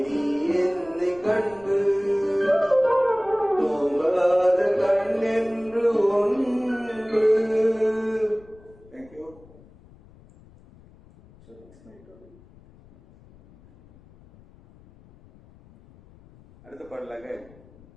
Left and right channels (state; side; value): noise; left; rumble, 25 dB below the sound